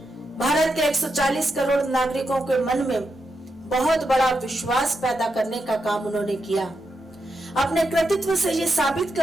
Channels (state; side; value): normal; both; correlation 0.85